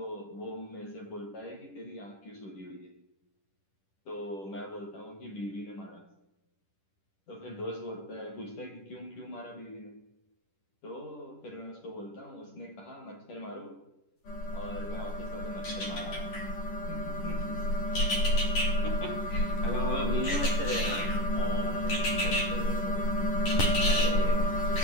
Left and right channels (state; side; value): late; right; 10 ms